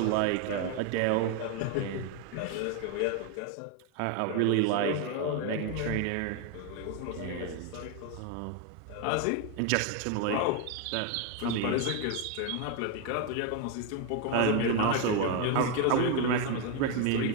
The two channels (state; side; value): different; both; correlation 0.01